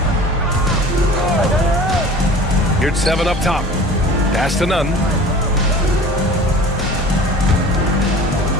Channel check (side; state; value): both; normal; correlation 0.41